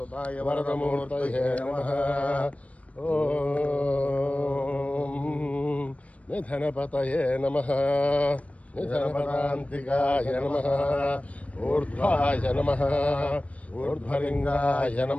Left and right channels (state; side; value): late; right; 0.066 ms